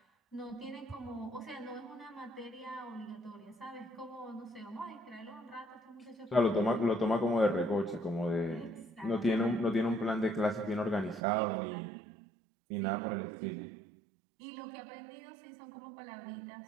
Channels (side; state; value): left; drops out; at 11.2 s